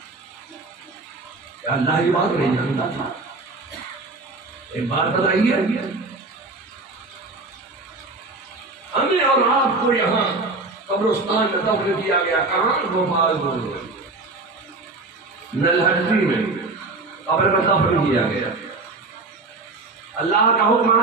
اللہ یہ بات نہیں جانتا تھا۔ ایک بات بتائیے، ہمیں اور آپ کو یہاں قبرستان میں دفن کیا گیا، کہاں؟ بھوپال نلہٹی میں قبر میں دفن کیا گیا۔ اللہ کا حکم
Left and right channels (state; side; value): quieter; left; 3.4 dB